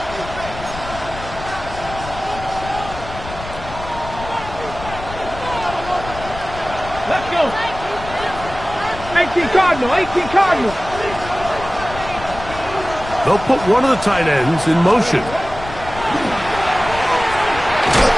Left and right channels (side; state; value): left; noise; rumble, 12 dB below the sound